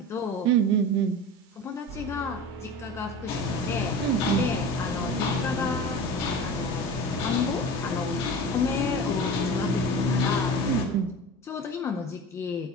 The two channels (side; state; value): both; normal; correlation 0.33